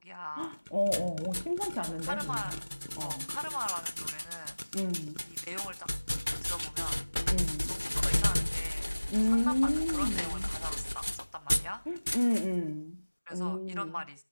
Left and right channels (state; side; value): inverted; both; correlation -1.00